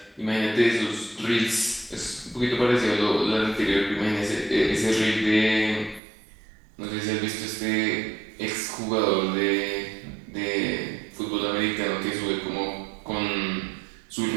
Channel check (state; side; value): drops out; left; at 6.0 s